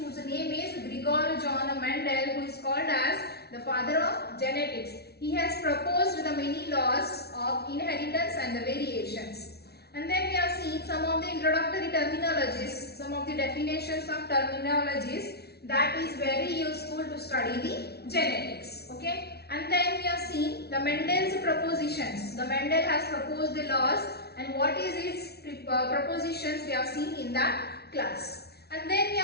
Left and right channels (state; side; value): late; right; 0.47 ms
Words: name is Gregor John Mendel, who is called as the father of genetics. He has proposed the many laws of inheritance and the variations. And then we have seen some of the introductory terminologies, some of the definitions of terminologies that is very useful to study the genetics. Okay. And then we have seen the Mendel's propositions. The Mendel has proposed the laws and what is his propositions we have seen in that class. And then we